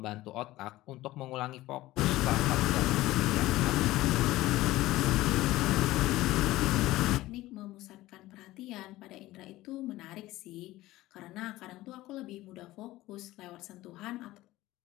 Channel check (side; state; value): right; quieter; 17.1 dB